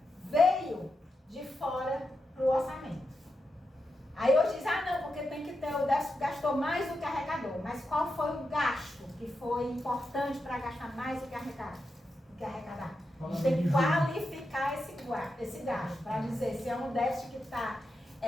veio de fora para o orçamento. Aí hoje diz, não, porque tem que ter, o déficit gastou mais do que arrecadou. Mas qual foi o gasto que foi importante para gastar mais do que arrecadar? A gente tem que qualificar esse gasto, para dizer se é um déficit que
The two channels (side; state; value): both; normal; correlation 0.87